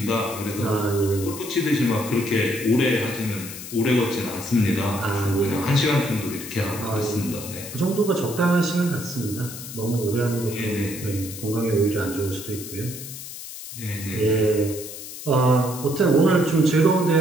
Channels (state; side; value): noise; left; hiss, 11 dB below the sound